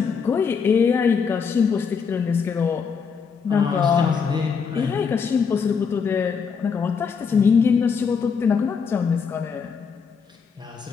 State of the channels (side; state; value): right; quieter; 6.0 dB